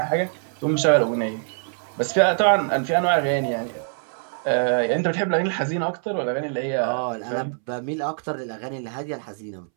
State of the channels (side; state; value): left; silent; 63 dB below the other